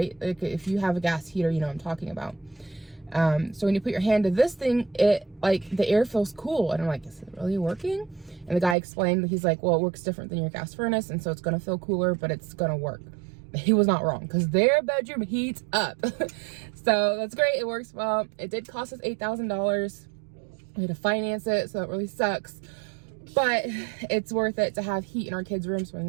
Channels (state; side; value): drops out; left; at 8.8 s